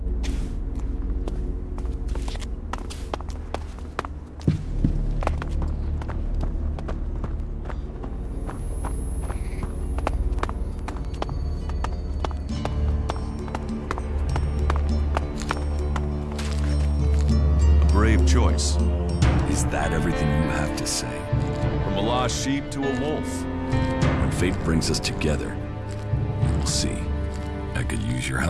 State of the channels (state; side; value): identical; both; correlation 1.00